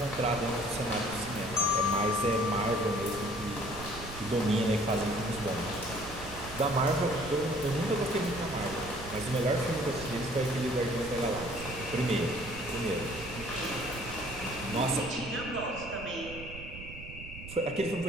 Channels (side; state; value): right; noise; rumble, 13 dB below the sound